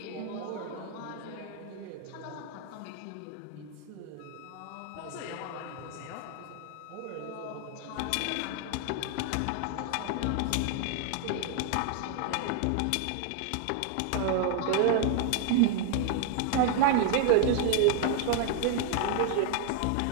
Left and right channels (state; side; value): different; both; correlation 0.00